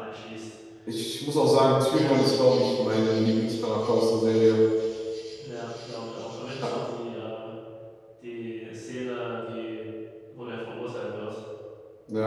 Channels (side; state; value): both; identical; correlation 1.00